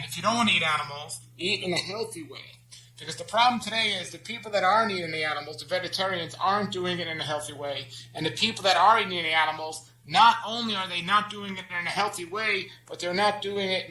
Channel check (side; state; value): both; identical; correlation 1.00